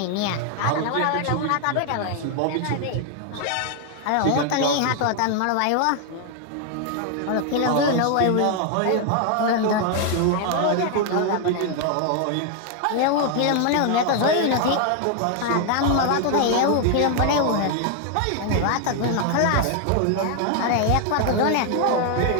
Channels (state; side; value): different; both; correlation 0.00